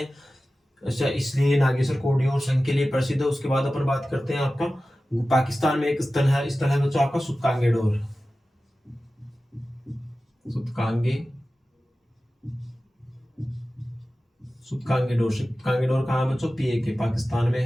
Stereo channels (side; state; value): both; normal; correlation 0.95